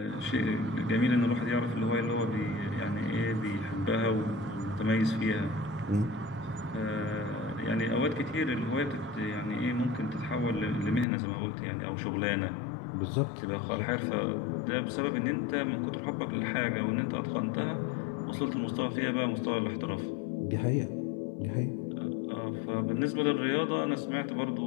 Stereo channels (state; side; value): drops out; right; at 11.1 s